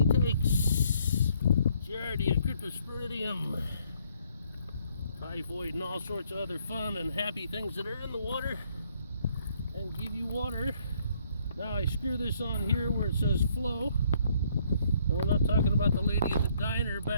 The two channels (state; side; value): inverted; both; correlation -0.67